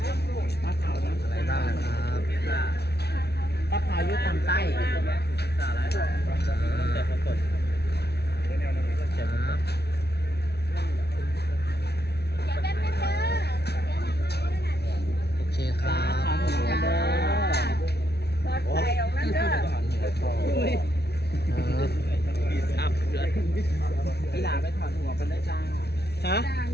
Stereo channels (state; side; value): late; right; 0.48 ms